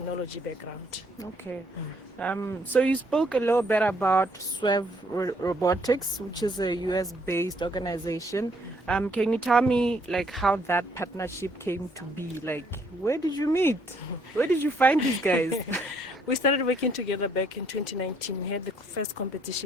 background. Okay. So you spoke a little bit about Swerve Robotics, which is a US-based organization. Can you tell me like how that partnership came to be? Like, where did you meet? Where did you find these guys? We started working together back in 2019. We had the first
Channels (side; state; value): both; normal; correlation 0.67